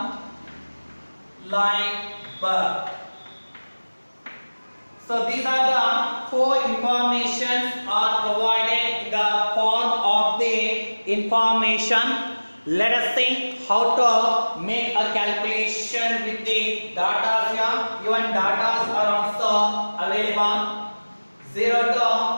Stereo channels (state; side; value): inverted; both; correlation -1.00